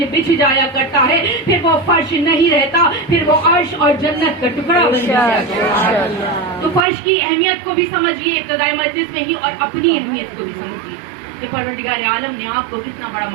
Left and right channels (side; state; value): left; drops out; at 6.9 s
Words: بچھ جایا کرتا ہے پھر وہ فرش نہیں رہتا، پھر وہ عرش اور جنت کا ٹکڑا بن جاتا ہے. تو فرش کی اہمیت کو بھی سمجھیے ابتدائی مجلس میں ہی، اور اپنی اہمیت کو بھی سمجھیے کہ پروردگار عالم نے آپ کو کتنا بڑا